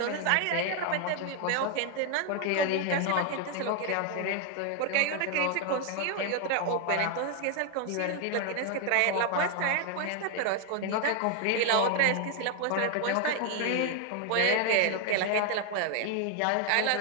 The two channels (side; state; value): both; different; correlation 0.01